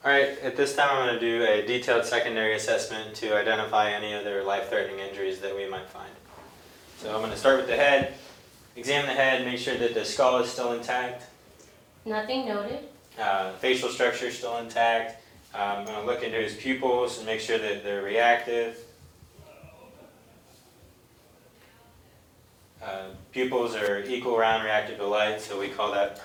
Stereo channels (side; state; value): both; identical; correlation 1.00